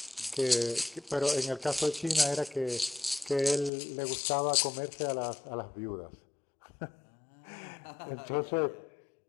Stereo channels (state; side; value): drops out; right; at 3.7 s